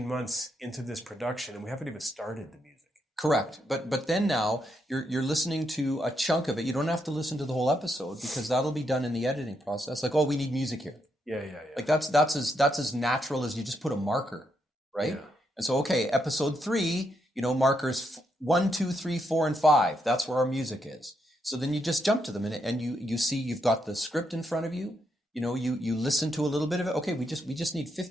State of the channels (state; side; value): normal; both; correlation 0.79